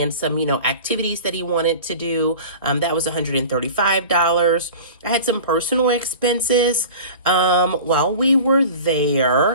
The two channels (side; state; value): both; inverted; correlation -0.38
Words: some, activities that he wanted to do. That was $135. I had some personal expenses while we were